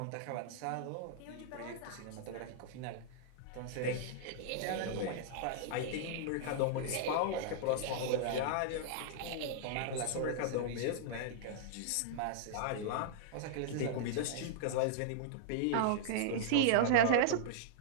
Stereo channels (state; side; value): different; both; correlation -0.02